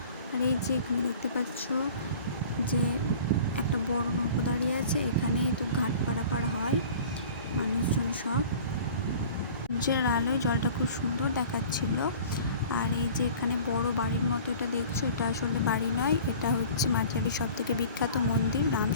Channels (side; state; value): both; inverted; correlation -0.44